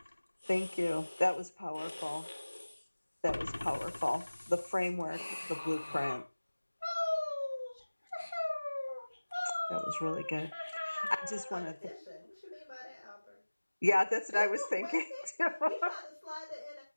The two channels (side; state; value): both; inverted; correlation -1.00